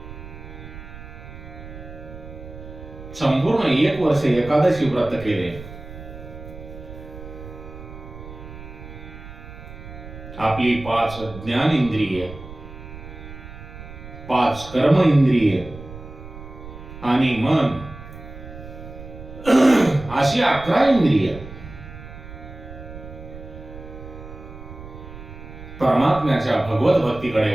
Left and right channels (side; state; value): right; noise; rumble, 14 dB below the sound